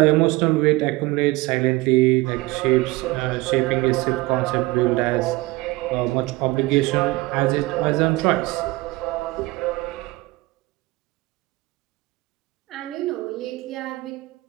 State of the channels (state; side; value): quieter; left; 21.2 dB